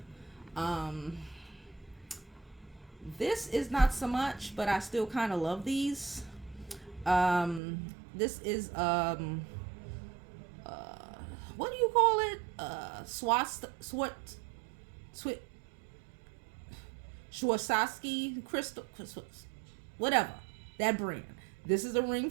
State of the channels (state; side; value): drops out; left; at 7.6 s